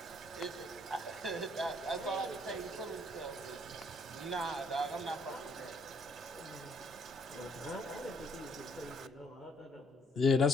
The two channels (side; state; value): both; normal; correlation 0.66